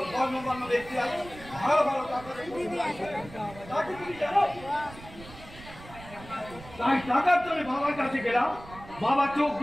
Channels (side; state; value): right; noise; rumble, 17 dB below the sound